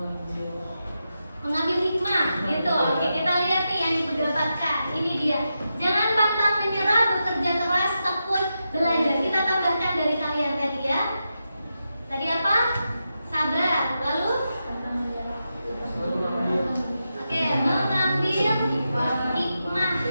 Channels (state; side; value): inverted; both; correlation -0.88